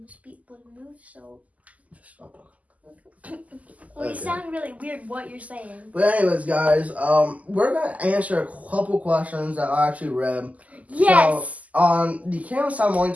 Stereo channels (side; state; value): left; late; 0.074 ms